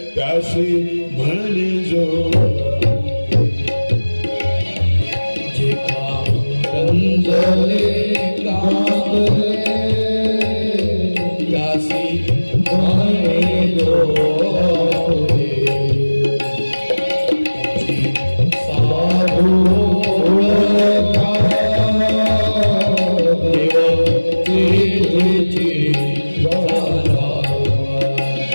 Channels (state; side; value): inverted; both; correlation -1.00